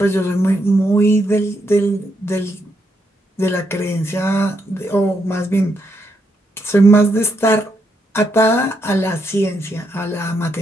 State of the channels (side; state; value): both; normal; correlation 0.78